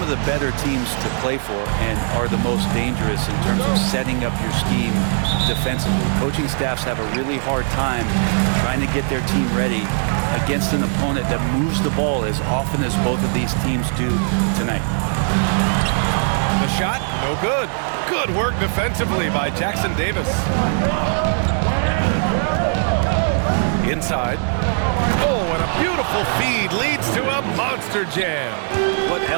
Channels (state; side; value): silent; left; digital silence